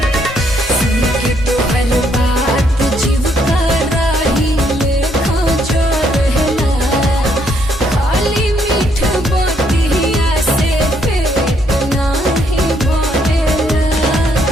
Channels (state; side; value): normal; both; correlation 0.71